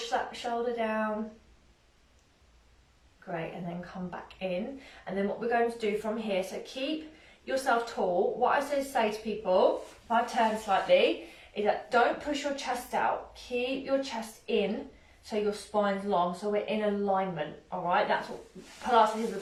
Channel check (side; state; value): both; identical; correlation 1.00